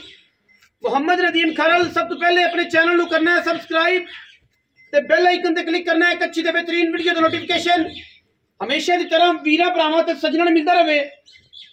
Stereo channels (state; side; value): identical; both; correlation 1.00